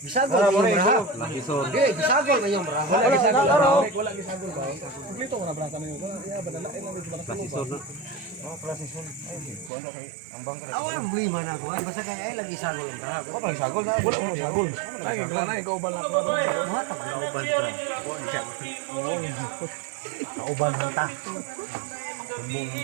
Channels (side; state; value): left; drops out; at 9.7 s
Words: inyong braha. Hindi, bisagol inyong braha. Wala bisagol. Wala bisagol ba? Kumplito ko na braha kami. Klasisor na. Klasisor. Ay, kuha na kay ang bangka. Ang buliman ako. Basta ka ay lagi sagol ang braha. Wala bisagol na. Wala bisagol. Ay, ikaw ba lang? Kauban mo ta.